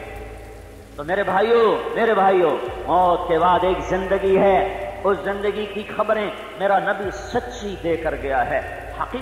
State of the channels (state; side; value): identical; both; correlation 1.00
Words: تو میرے بھائیوں موت کے بعد ایک زندگی ہے، اس زندگی کی خبریں میرا نبی سچی دے کر گیا ہے،